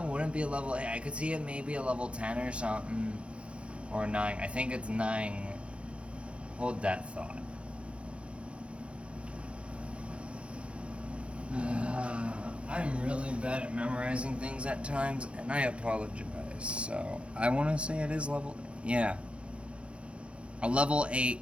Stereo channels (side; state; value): left; late; 0.059 ms